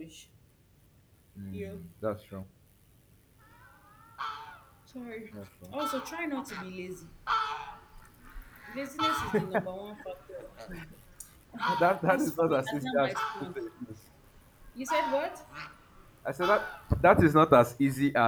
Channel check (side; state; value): both; identical; correlation 1.00